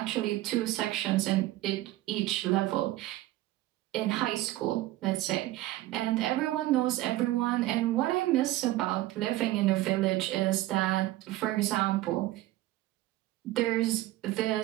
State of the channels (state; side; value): quieter; left; 16.4 dB